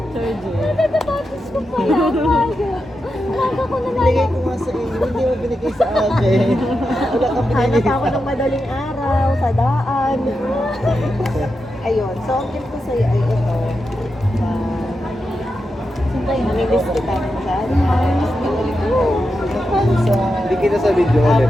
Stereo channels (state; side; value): normal; both; correlation 0.88